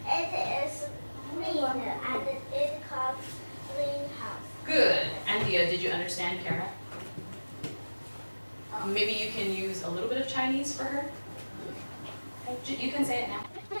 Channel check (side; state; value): both; inverted; correlation -1.00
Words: It is green and it called greenhouse. Good. Anthea, did you understand Kara? Maybe you can use a little bit of Chinese for her? You can say it now.